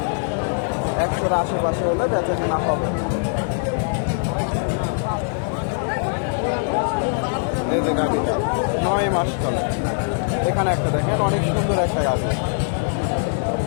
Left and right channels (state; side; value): silent; right; digital silence